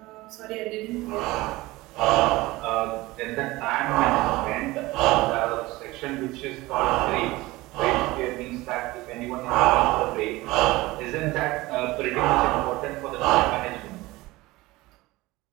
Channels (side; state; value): left; quieter; 19.9 dB